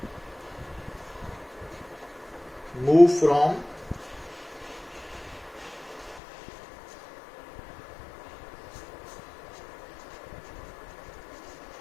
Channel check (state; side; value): drops out; right; at 6.2 s